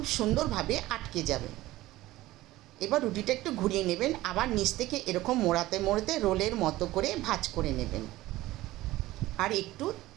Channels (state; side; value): quieter; left; 17.1 dB